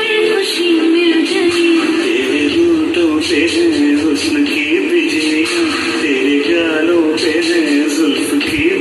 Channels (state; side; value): identical; both; correlation 1.00